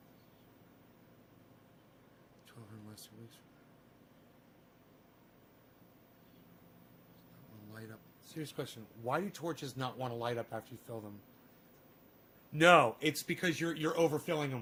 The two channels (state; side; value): identical; both; correlation 1.00